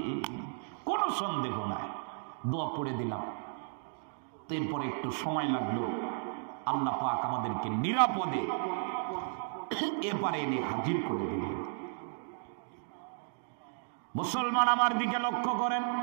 কোনো সন্দেহ নাই। দোয়া পড়ে দিলাম। এরপরে একটু সময় লাগলো, আল্লাহ পাক আমাদেরকে নিরাপদে এপারে এনে হাজির করে দিলেন। মুসলমান আমার দিকে লক্ষ্য করেন।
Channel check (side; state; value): left; silent; digital silence